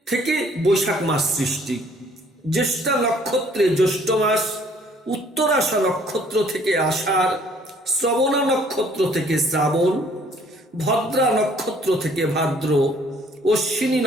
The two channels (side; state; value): both; normal; correlation 0.59